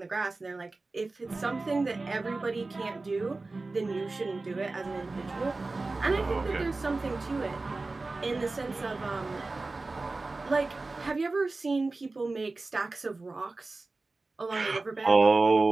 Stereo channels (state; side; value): quieter; left; 3.4 dB